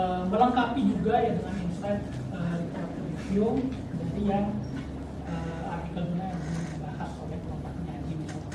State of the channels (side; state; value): both; identical; correlation 1.00